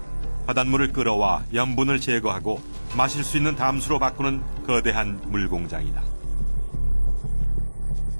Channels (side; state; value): both; inverted; correlation -1.00